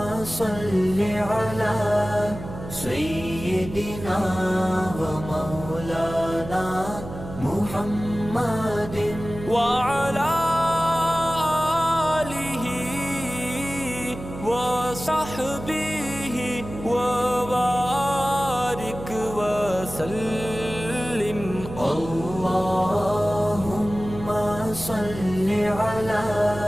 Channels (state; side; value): noise; right; hum, 11 dB below the sound